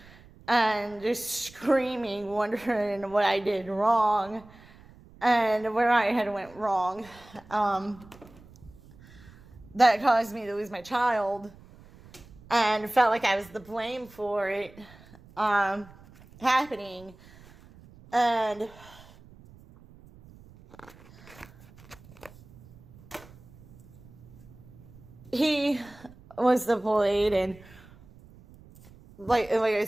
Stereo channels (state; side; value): noise; right; rumble, 23 dB below the sound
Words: and just screaming, wondering what I did wrong and where I had went wrong. That caused me to lose my child, and felt like I was the blame for it happening. And he was deployed, and like I